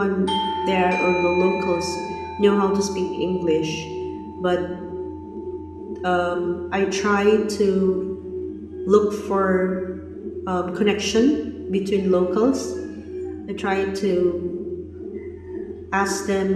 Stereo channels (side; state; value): both; identical; correlation 1.00